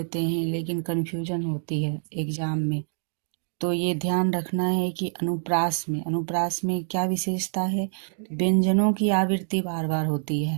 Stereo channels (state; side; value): silent; left; digital silence